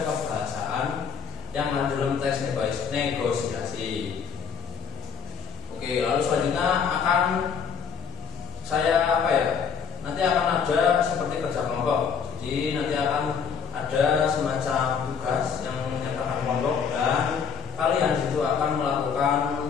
kebahasaan yang ada dalam teks negosiasi. Oke, lalu selanjutnya akan saya nanti akan ada seperti kerja kelompok. Jadi nanti akan ada semacam tugas yang menyertakan kelompok dan kalian itu akan melakukan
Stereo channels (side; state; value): right; quieter; 6.8 dB